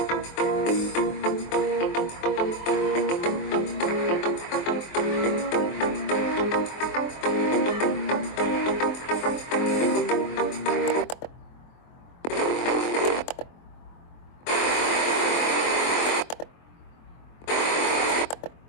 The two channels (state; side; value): late; right; 23 ms